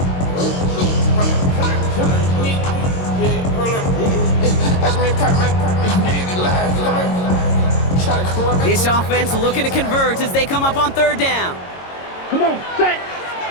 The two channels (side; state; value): right; late; 22 ms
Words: This offense looking to convert as they come up on 3rd down. Come on, set.